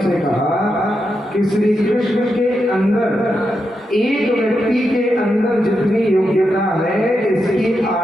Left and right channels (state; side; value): normal; both; correlation 0.85